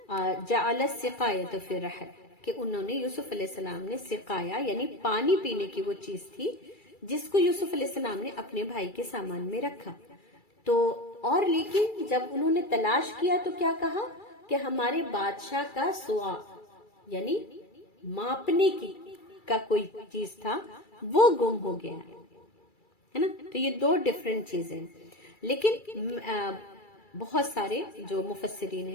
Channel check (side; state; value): right; late; 2.3 ms